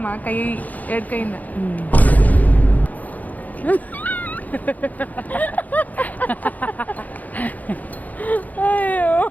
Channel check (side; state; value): right; late; 0.079 ms